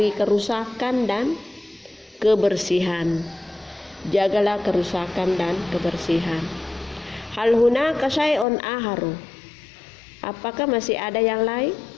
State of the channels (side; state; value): right; drops out; at 8.5 s